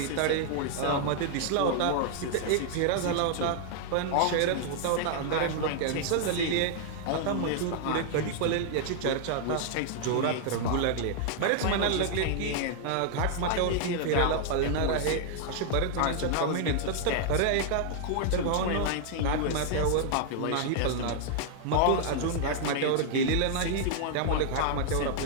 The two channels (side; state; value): both; different; correlation 0.00